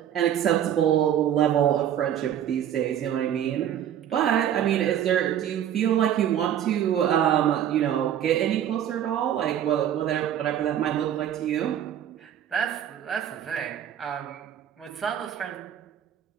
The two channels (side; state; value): left; quieter; 10.3 dB